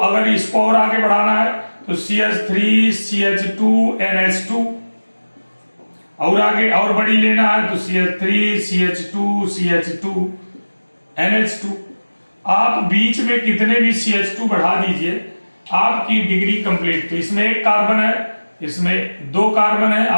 इसको और आगे बढ़ाना है तो CH3CH2NH2, और आगे और बड़ी लेना है तो CH3CH2CH2NH2। आप बीच में कितने भी CH2 बढ़ा दीजिए, आपकी डिग्री कंप्लीट। तो इसमें 1 कार्बन है, इसमें 2 कार्बन है,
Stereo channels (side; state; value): both; inverted; correlation -1.00